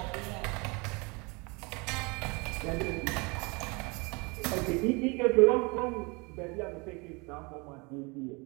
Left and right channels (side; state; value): left; quieter; 28.7 dB